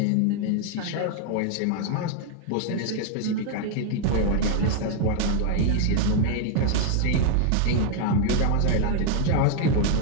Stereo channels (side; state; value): both; different; correlation 0.00